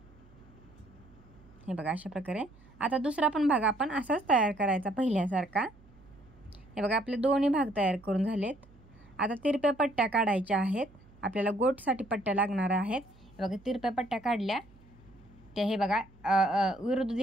हे बघा अशा प्रकारे. आता दुसरा पण भाग आपण असाच तयार करायचा पहिल्यासारखा. हे बघा आपले दोन्ही भाग तयार करून झालेत. आता तिरप्या पट्ट्या काढायच्या आहेत. आपल्याला गोटसाठी पट्ट्या लागणार आहेत. हे बघा तिरप्या पट्ट्या काढल्या त्या हे बघा विरुद्ध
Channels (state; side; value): noise; right; hum, 26 dB below the sound